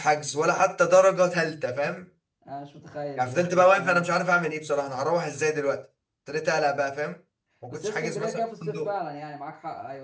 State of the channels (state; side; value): identical; both; correlation 1.00